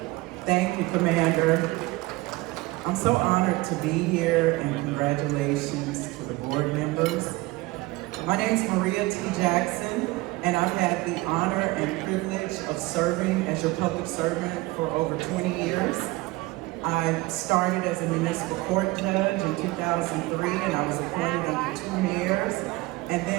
Thank you, Commander. I'm so honored to be here, and congratulations to the board members My name's Maria T. Jackson, and I've had the honor and privilege of serving as your public servant for over 20 years. I started as a municipal court judge in 2003, and I was appointed over 2 years. And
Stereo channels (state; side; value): quieter; left; 21.0 dB